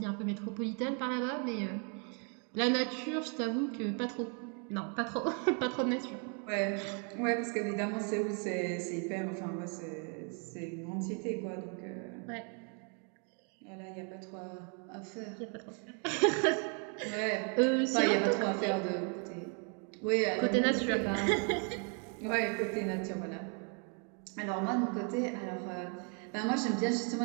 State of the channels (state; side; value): quieter; left; 39.3 dB